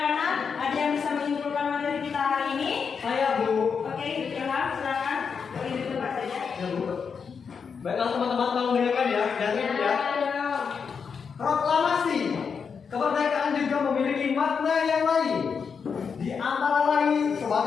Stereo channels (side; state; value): right; quieter; 6.1 dB